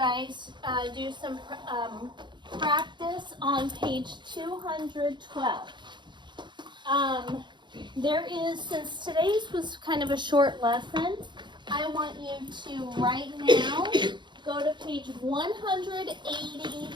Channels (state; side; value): late; left; 0.22 ms